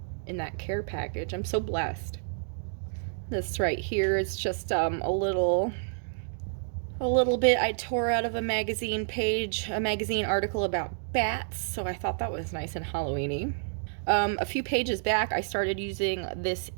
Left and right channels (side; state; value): left; silent; digital silence